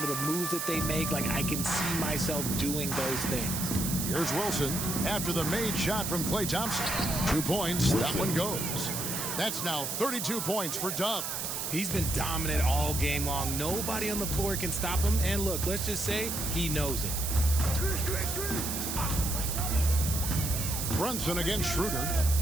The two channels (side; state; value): right; noise; hiss, 3 dB below the sound